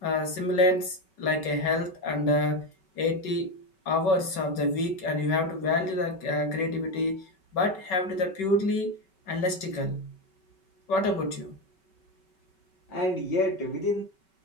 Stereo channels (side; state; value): right; late; 5.3 ms